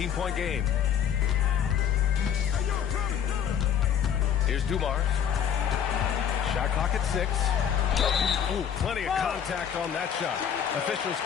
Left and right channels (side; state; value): right; quieter; 8.7 dB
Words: game. Here's Dumars. Shot clock at 6. Ooh, plenty of contact on that shot. Officials